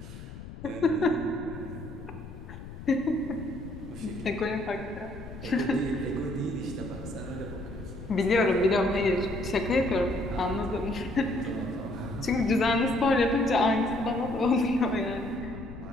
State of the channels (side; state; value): left; noise; rumble, 13 dB below the sound